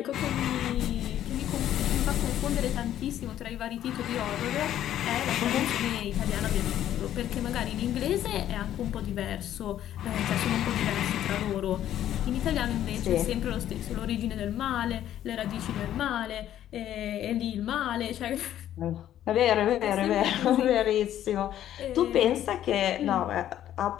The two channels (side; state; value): right; quieter; 11.7 dB